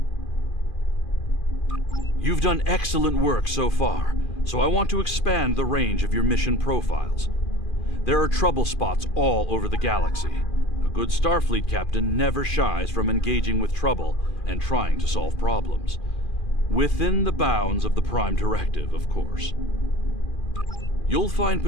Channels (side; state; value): right; late; 2.4 ms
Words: You've done excellent work so far, so I want to expand the range of your mission profiles. There are trouble spots all over the galaxy. A good Starfleet captain never shies from engaging with trouble and trying to solve problems. Within the bounds of the Prime Directive, of course. You'll find